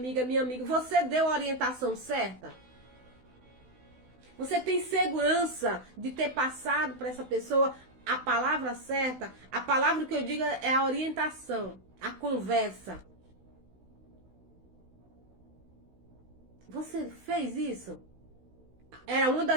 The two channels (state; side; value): late; left; 16 ms